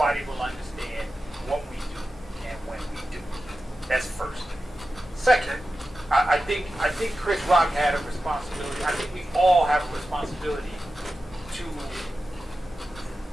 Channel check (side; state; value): both; normal; correlation 0.92